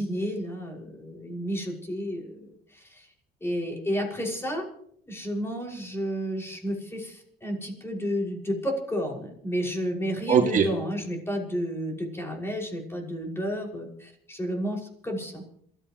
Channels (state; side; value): normal; both; correlation 0.66